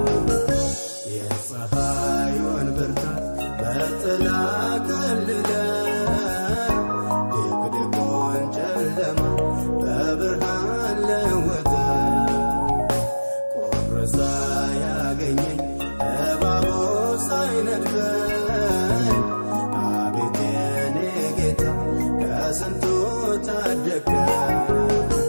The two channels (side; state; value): both; inverted; correlation -1.00